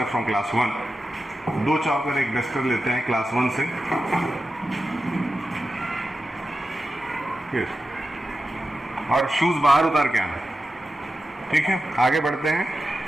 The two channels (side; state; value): both; normal; correlation 0.92